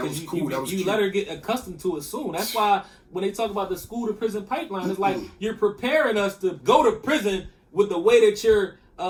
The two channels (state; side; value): identical; both; correlation 1.00